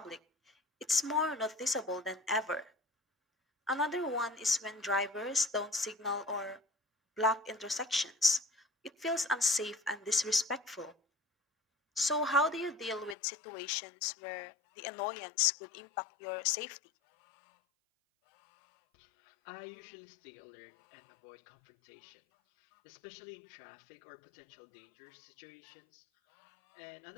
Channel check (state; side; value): drops out; right; at 13.2 s